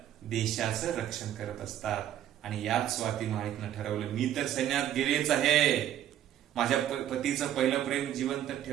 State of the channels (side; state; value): left; quieter; 11.5 dB